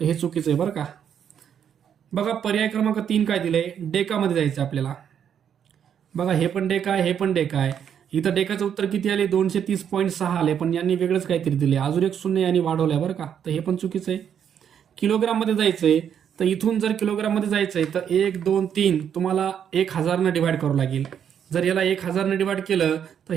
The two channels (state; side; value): quieter; left; 8.5 dB